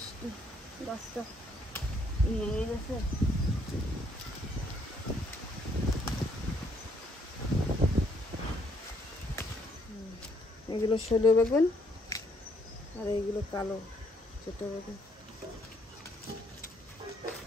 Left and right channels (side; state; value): both; normal; correlation 0.69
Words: গাছটা ইয়ে গেছে। এগুলো ষোলো বেগুন আর এইগুলো কালো ছোট বেগুন।